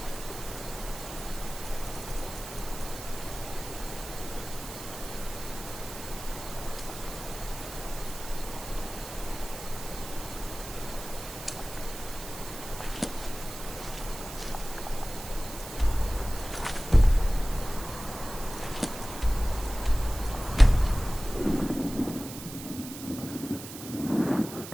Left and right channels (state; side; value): noise; right; hiss, 11 dB below the sound